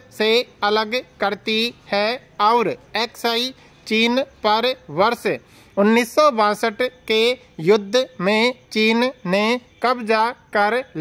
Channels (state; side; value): identical; both; correlation 1.00